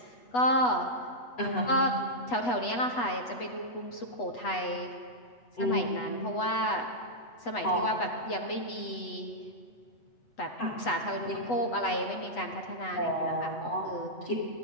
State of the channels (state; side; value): late; right; 8.1 ms